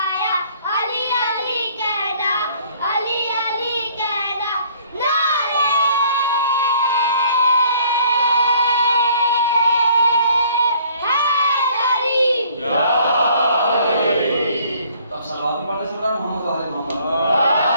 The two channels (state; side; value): inverted; both; correlation -0.59